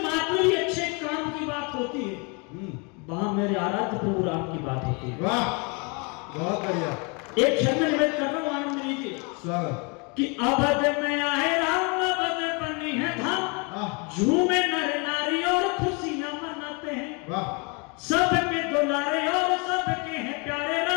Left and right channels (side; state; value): right; quieter; 32.2 dB